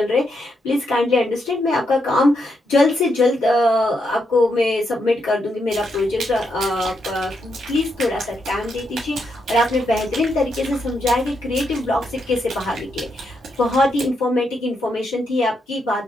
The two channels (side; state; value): both; normal; correlation 0.80